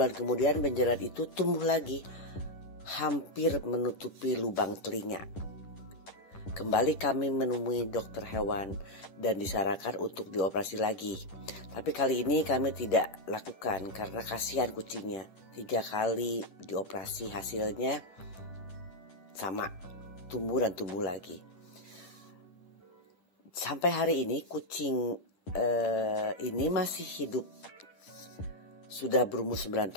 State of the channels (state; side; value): late; right; 10 ms